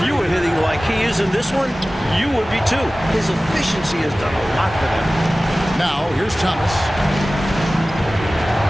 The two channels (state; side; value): normal; both; correlation 0.97